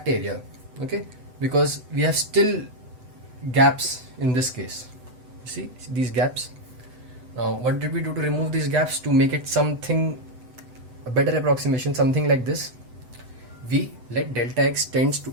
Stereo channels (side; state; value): left; late; 8.0 ms